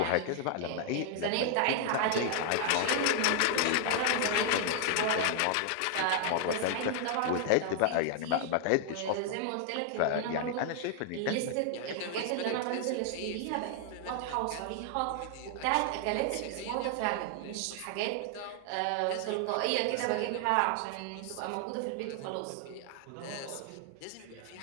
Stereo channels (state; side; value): different; both; correlation 0.00